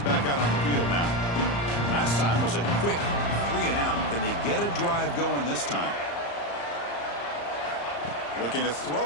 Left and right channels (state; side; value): late; right; 35 ms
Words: out on the field now. Last time was a quick 3 and out. Can they get a drive going this time? Looking to